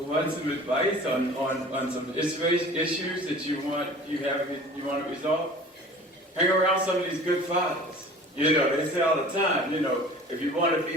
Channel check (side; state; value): both; normal; correlation 0.43